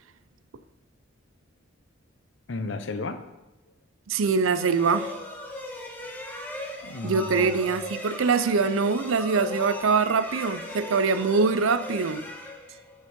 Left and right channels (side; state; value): left; quieter; 3.9 dB